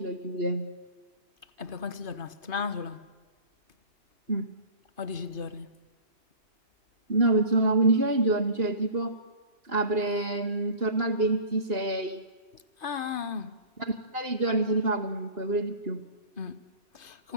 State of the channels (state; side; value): late; left; 2.5 ms